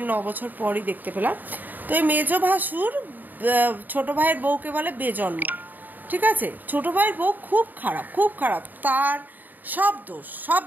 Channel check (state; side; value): late; left; 0.087 ms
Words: 9 বছর পরই দেখতে পেলাম। তো এই মেজো ভাসুর ছোট ভাইয়ের বউকে বলে বেজন্ম, ঠিক আছে। ছোট ভাইয়ের বউ খুব খারাপ, তার সব দোষ, সব